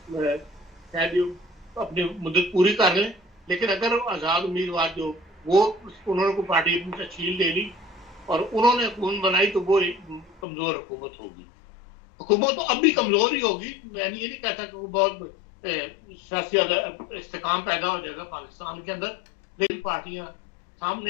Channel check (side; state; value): right; drops out; at 10.4 s